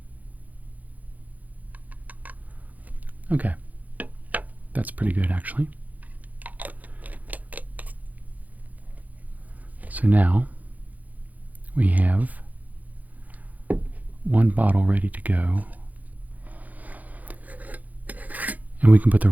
Okay, that's pretty good actually. So now we have one bottle ready to go, and we can put the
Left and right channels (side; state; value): left; late; 0.079 ms